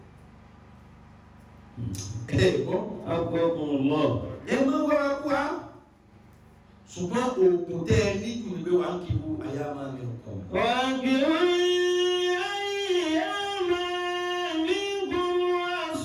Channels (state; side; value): identical; both; correlation 1.00